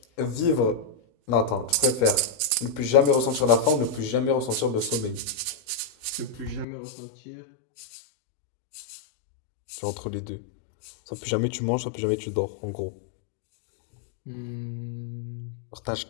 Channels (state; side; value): drops out; right; at 6.7 s